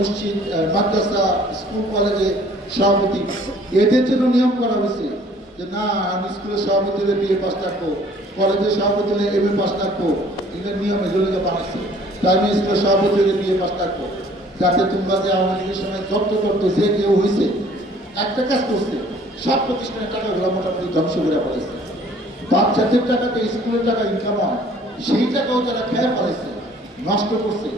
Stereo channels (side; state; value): both; normal; correlation 0.55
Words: মাদ্রাসা স্কুল কলেজে সভাপতি। এদের জন্য নিয়ম করা হয়েছে যে না আমি স্কুলের সভাপতি হলে BA পাস থাকবো, কলেজের সভাপতি হলে MA পাস থাকবো। এদের নিয়ম এগুলোকে বানাচ্ছে। প্রাইমারি স্কুলের সভাপতি হলে BA পাস থাকবো, যাতে তোমরা যে আওয়ামী লীগের সময় জব্দ করতো যে কেউ হয়েছে একটা কাজ করছে, সব প্রতিষ্ঠানের টাকাগুলো মোটামুটি ধ্বংস করে ফেলেছে। বাচ্চাদের টাকাতে স্কুলের টাকা ইনকাম হয়, সেই টাকাও তারা খেয়ে ফেলেছে, নষ্ট করছে।